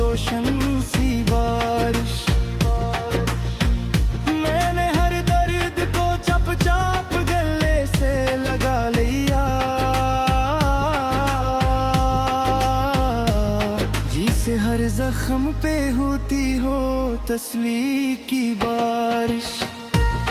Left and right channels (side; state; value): both; identical; correlation 1.00